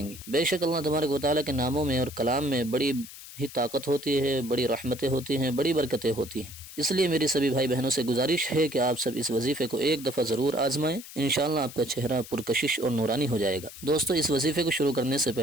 گے۔ بے شک اللہ تبارک و تعالیٰ کے ناموں میں اور کلام میں بڑی ہی طاقت ہوتی ہے، بڑی رحمتیں ہوتی ہیں، بڑی برکتیں ہوتی ہیں۔ اس لیے میری سبھی بھائی بہنوں سے گزارش ہے کہ آپ سب اس وظیفے کو ایک دفعہ ضرور آزمائیں۔ انشاءاللہ آپ کا چہرہ پرکشش اور نورانی ہو جائے گا۔ دوستو، اس وظیفے کو شروع کرنے سے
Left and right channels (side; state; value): left; noise; hiss, 15 dB below the sound